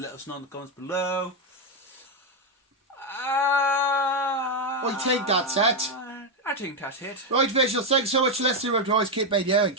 us know in the comments below. What do you think that's it? I think that's it. Right, visuals, thanks so much for listening. Remember to always keep being you and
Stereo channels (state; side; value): normal; both; correlation 0.05